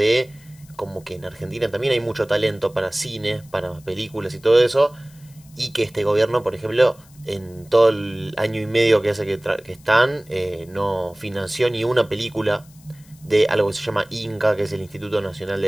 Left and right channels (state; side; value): noise; left; hiss, 27 dB below the sound